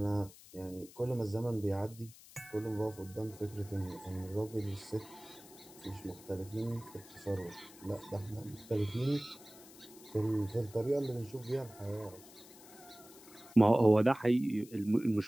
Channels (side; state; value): left; noise; hiss, 20 dB below the sound